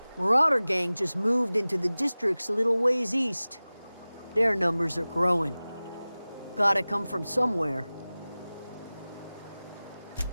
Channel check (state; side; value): inverted; both; correlation -0.98